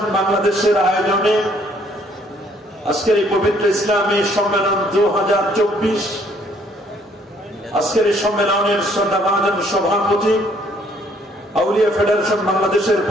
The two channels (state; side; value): normal; both; correlation 0.64